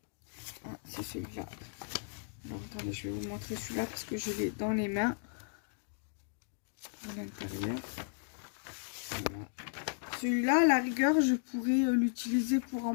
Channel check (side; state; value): right; silent; digital silence